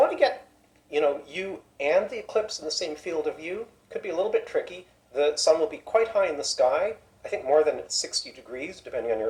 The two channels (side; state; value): both; identical; correlation 1.00